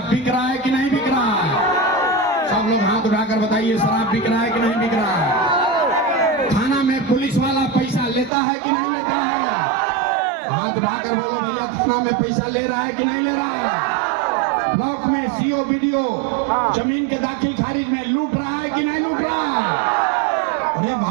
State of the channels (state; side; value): drops out; left; at 8.3 s